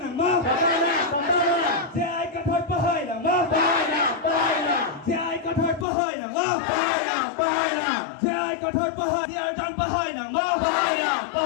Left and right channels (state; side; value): drops out; right; at 5.9 s